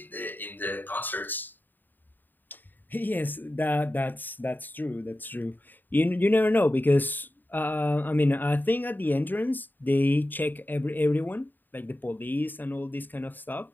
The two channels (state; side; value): late; right; 0.090 ms